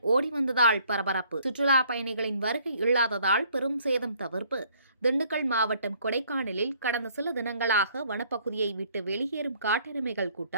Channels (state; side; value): inverted; both; correlation -0.61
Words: ஓடி வந்ததால் பரபரப்பு. சுற்றுலா பயணிகளின் வருகை இல்லாததால் பெரும் சேதம் தவிர்ப்பு. திண்டுக்கல் மாவட்டம் கொடைக்கானலில் கடந்த சில தினங்களாக வனப்பகுதியை விட்டு வெளியேறும் காட்டெருமைகள்